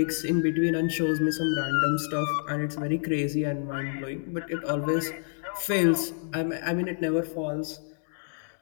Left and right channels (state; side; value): silent; right; digital silence